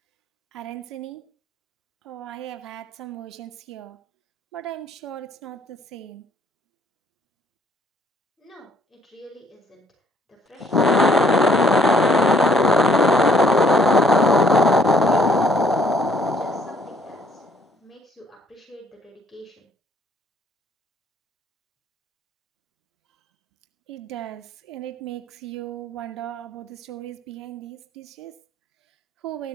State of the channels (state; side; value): normal; both; correlation 0.63